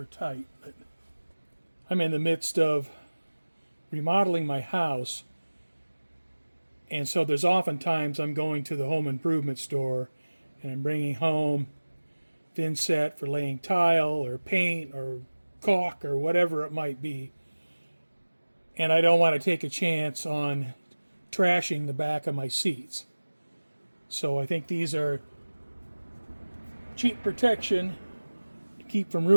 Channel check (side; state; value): both; inverted; correlation -1.00